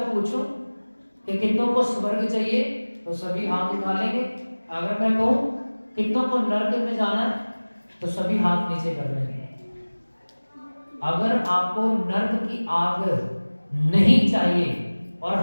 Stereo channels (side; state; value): both; inverted; correlation -1.00